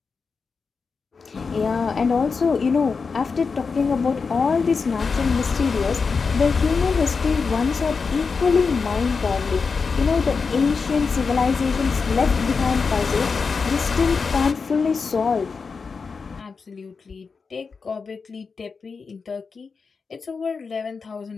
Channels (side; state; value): right; quieter; 5.0 dB